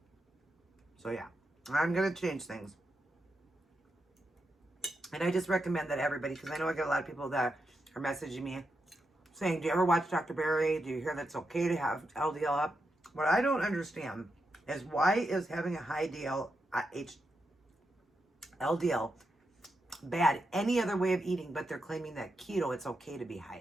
So, yeah. I'm going to change things. And I just recommend that everybody, because I know I get a lot of people that are messaging me saying, do you ever watch Dr. Barry? Do you hear that it's okay to have LDL up? What I don't understand is why is having a high LDL bad any other way of eating, but they're claiming that keto, it's okay to be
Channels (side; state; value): both; normal; correlation 0.85